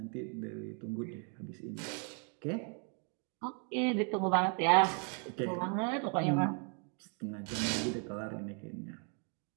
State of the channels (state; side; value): quieter; left; 39.9 dB